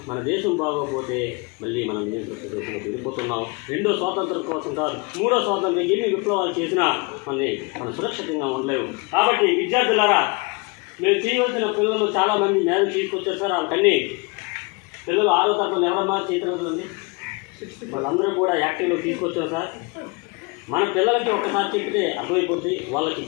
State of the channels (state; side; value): quieter; right; 29.2 dB